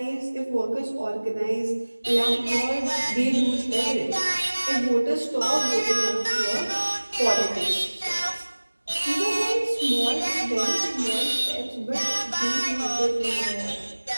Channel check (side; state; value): both; inverted; correlation -1.00